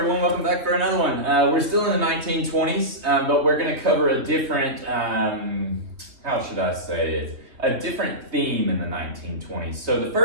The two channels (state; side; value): late; left; 2.8 ms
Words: welcome back for another one. We're still in the 1920s, but we're going to cover a different, how should I say it, a different theme in the 1920s. So the